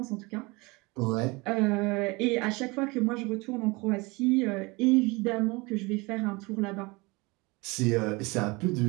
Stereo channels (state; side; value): quieter; left; 25.1 dB